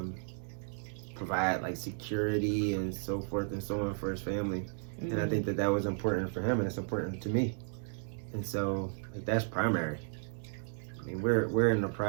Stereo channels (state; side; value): silent; left; 55 dB below the other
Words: provide like security and so forth and so on for his family. Mm-hmm. And I think that was important for him, and it's important to me. And so like, that's primary. We're in the